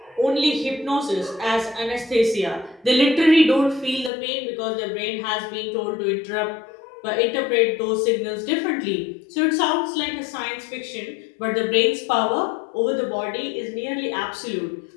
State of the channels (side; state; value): right; drops out; at 4.1 s